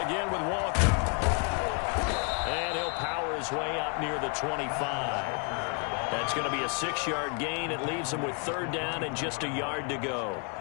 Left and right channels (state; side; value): quieter; right; 37.5 dB